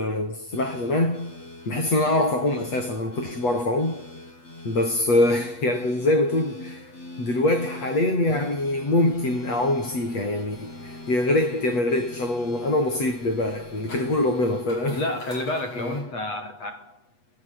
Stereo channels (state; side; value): late; right; 8.2 ms